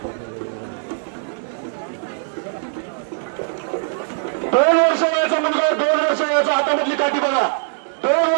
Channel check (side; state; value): left; silent; digital silence